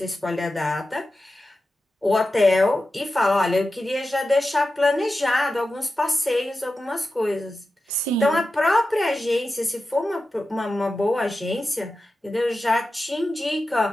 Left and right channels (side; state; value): both; normal; correlation 0.92